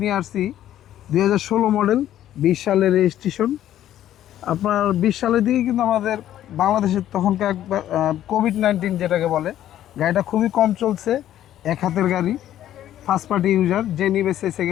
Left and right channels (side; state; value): right; quieter; 12.1 dB